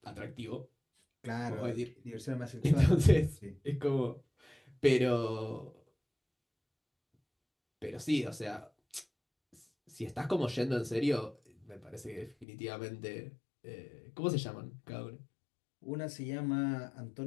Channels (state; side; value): drops out; right; at 12.5 s